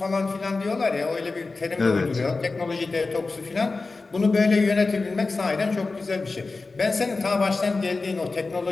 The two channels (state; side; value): quieter; right; 3.8 dB